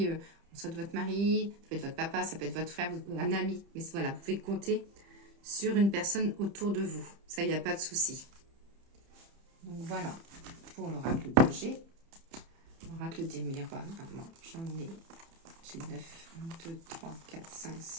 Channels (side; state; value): left; late; 30 ms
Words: soit de votre mari, ça peut être votre papa, ça peut être votre frère, un ami. Mais voilà, vous pouvez compter sur une personne autour de vous. Ça, il n'y a pas de souci. Donc voilà pour l'oracle de G. L'oracle des miroirs. J'ai 9, 1, 2, 3, 4, 5,